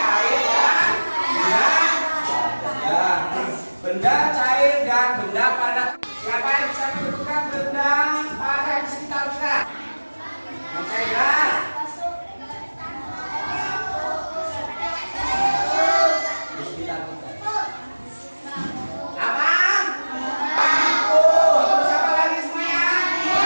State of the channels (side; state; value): both; inverted; correlation -1.00